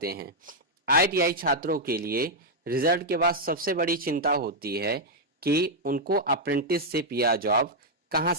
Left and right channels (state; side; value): normal; both; correlation -0.03